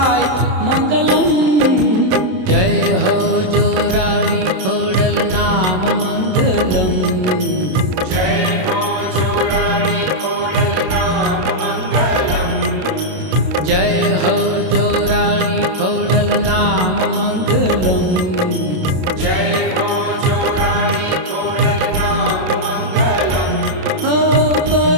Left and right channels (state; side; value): late; left; 27 ms